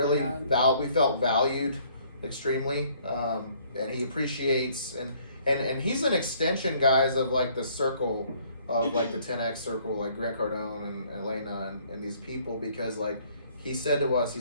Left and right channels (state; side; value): inverted; both; correlation -0.61